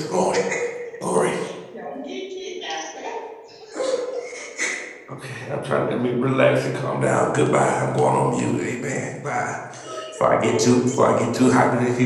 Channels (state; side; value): identical; both; correlation 1.00